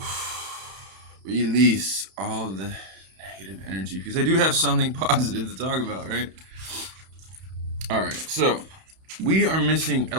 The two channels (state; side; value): late; left; 31 ms